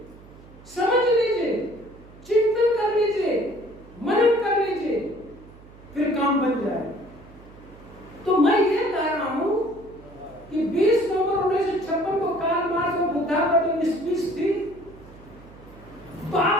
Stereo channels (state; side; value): noise; right; hum, 21 dB below the sound